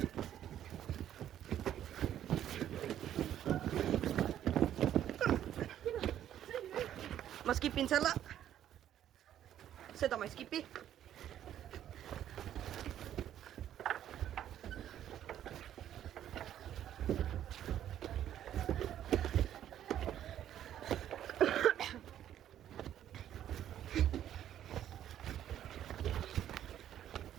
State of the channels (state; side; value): quieter; left; 11.0 dB